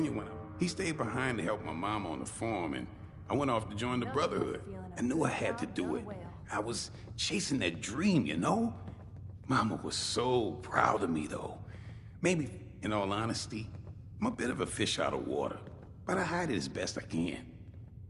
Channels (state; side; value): identical; both; correlation 1.00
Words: when he stayed behind to help my mom on the farm, and I went off to join the Brotherhood. I knew I had to do it. I was chasing that dream, you know? Mama was so proud of me, though. Maybe, in all honesty, I'm a bit of a fish out of water, but I hide it as best I can.